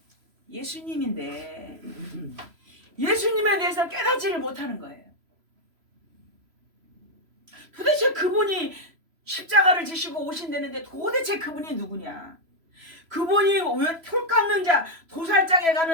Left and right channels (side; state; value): left; late; 3.0 ms